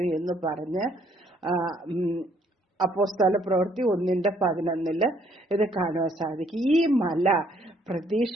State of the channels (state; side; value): normal; both; correlation 0.66